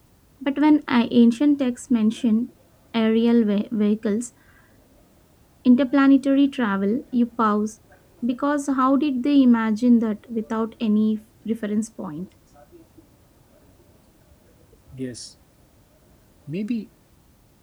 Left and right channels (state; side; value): identical; both; correlation 1.00